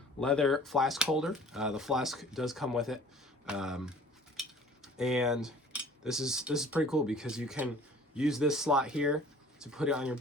leather flask holder. The flask does come with it, and this is pretty cool because you can use this slot here to put it on your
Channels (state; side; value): normal; both; correlation 0.49